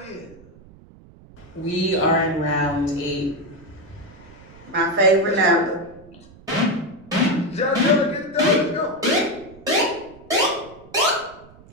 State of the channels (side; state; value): right; noise; rumble, 23 dB below the sound